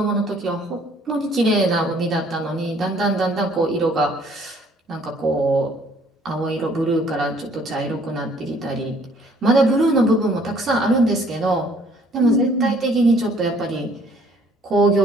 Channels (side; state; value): both; normal; correlation 0.60